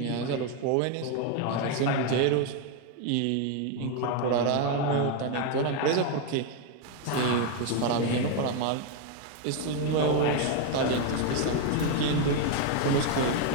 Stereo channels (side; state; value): both; different; correlation 0.01